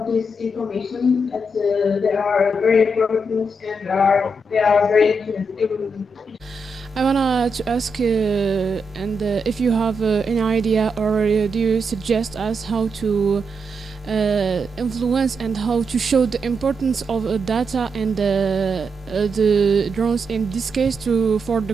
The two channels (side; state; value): both; normal; correlation 0.83